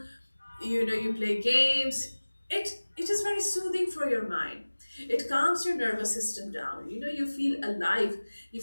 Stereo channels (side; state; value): both; inverted; correlation -1.00